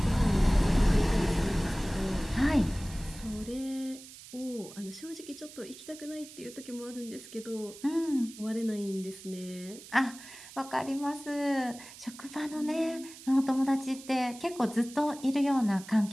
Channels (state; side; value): noise; right; hiss, 17 dB below the sound